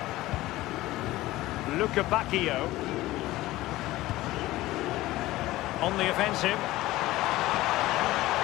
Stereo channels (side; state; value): right; quieter; 17.2 dB